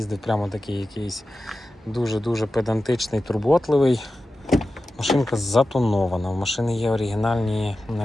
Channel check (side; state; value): both; normal; correlation 0.93